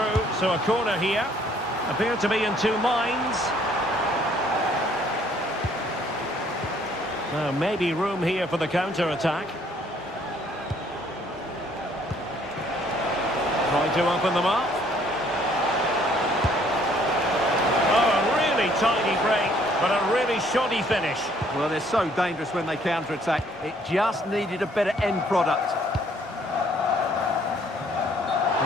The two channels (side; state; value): both; normal; correlation 0.62